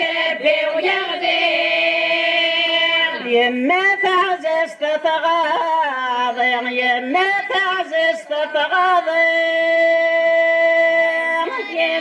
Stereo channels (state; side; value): identical; both; correlation 1.00